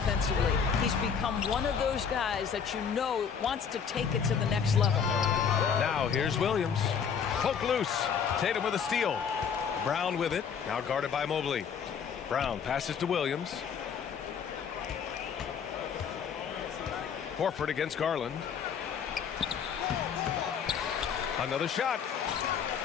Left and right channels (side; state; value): right; quieter; 7.0 dB